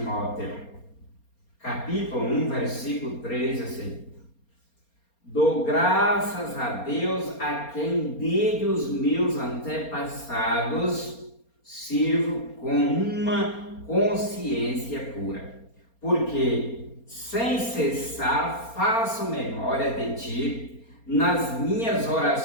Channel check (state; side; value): late; right; 4.3 ms